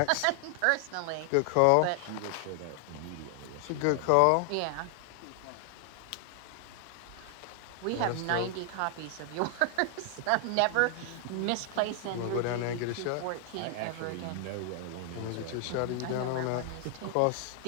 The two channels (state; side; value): different; both; correlation 0.00